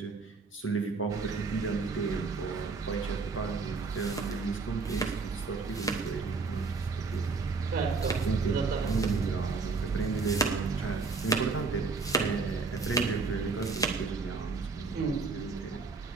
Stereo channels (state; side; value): quieter; left; 4.3 dB